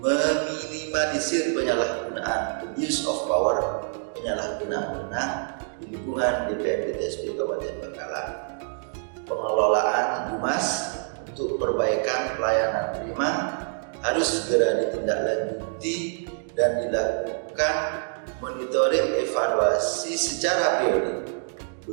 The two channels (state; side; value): silent; left; 61 dB below the other